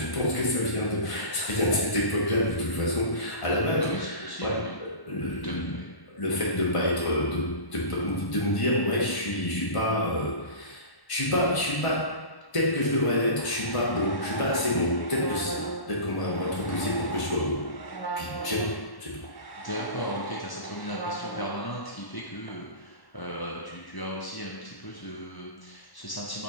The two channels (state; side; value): late; right; 1.1 ms